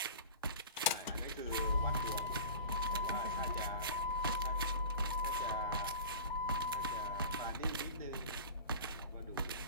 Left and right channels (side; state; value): both; inverted; correlation -0.38